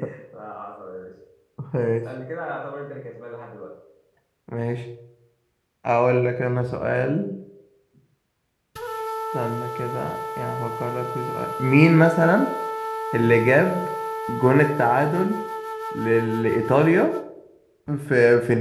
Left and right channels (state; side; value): identical; both; correlation 1.00